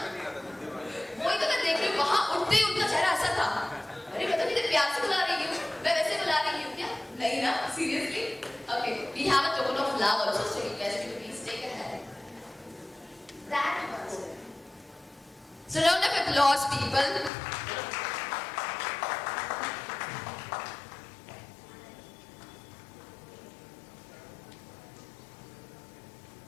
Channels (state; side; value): drops out; right; at 17.3 s